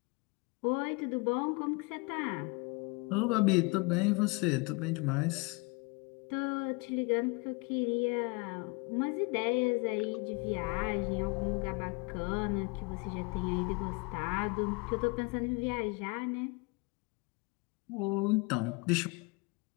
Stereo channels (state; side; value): quieter; right; 28.7 dB